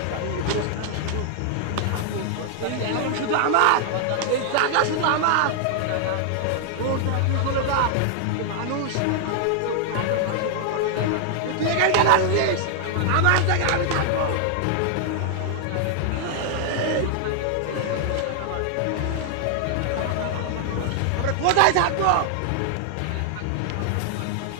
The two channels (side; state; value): both; different; correlation 0.00